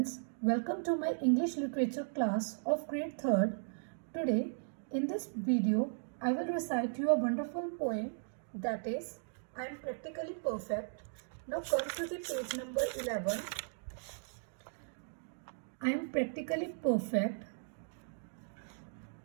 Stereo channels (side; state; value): left; silent; digital silence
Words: welcome to my English literature class of grade 3rd. Today, in this video, I will recite you a wonderful poem that is, I am practically perfect. Now come to the page number 11. I am practically perfect.